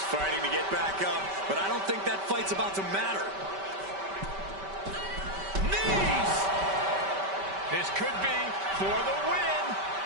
fighting to get back up, but I don't think that fight's about to matter. Knees! This could be for the win.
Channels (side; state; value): left; late; 5.1 ms